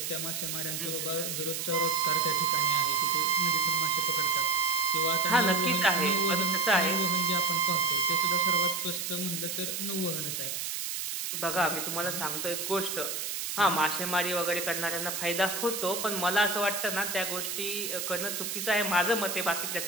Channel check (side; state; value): right; noise; hiss, 3 dB below the sound